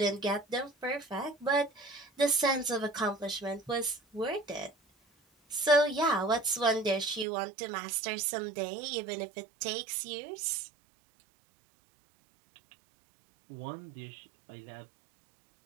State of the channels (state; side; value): drops out; left; at 7.2 s